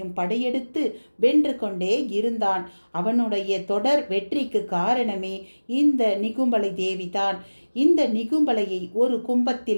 படையெடுத்து வென்று கொண்டே இருந்தான். அவனுடைய தொடர் வெற்றிக்கு காரணமே இந்த நிகும்பலை தேவிதான். இந்த நிகும்பலையை ஒரு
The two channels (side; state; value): both; inverted; correlation -1.00